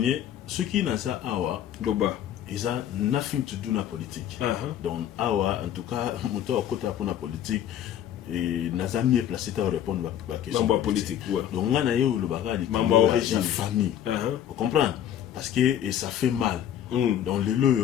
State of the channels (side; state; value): right; quieter; 10.5 dB